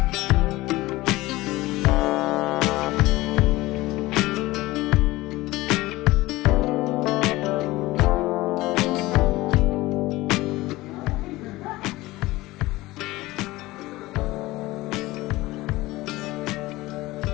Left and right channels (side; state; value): right; quieter; 19.2 dB